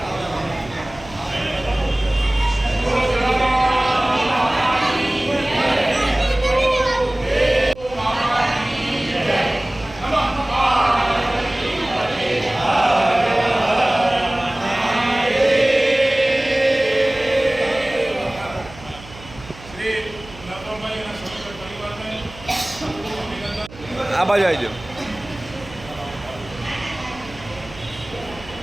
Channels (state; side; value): noise; right; hum, 18 dB below the sound